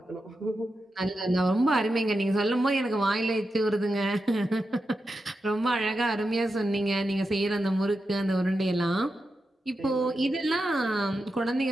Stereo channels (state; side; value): normal; both; correlation 0.89